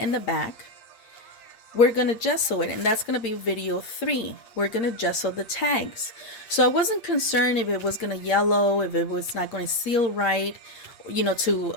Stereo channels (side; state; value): right; late; 8.7 ms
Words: the back, we're going to gesso it, and that's going to be video 3. We're going to gesso the tags. So I wasn't concerned if it was going to yellow, if it was not going to seal right, you know, to